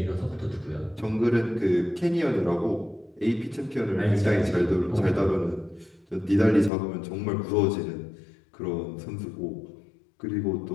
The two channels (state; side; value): drops out; right; at 6.7 s